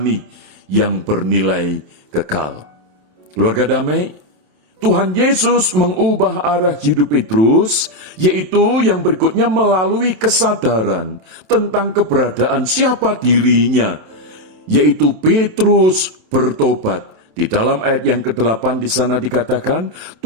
yang bernilai kekal. Keluarga damai, Tuhan Yesus mengubah arah hidup Petrus, yaitu yang berikutnya melalui kesadaran tentang keberadaan siapa dirinya, yaitu Petrus bertobat. Di dalam ayat yang ke-8 di sana dikatakan,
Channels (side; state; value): left; late; 27 ms